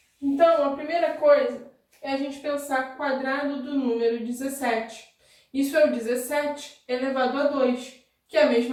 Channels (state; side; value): identical; both; correlation 1.00